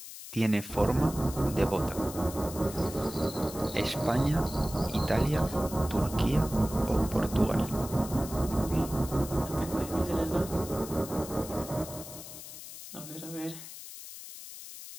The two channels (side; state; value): left; noise; hiss, 12 dB below the sound